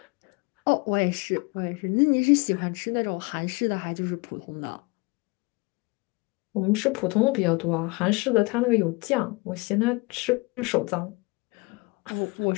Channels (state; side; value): quieter; right; 26.7 dB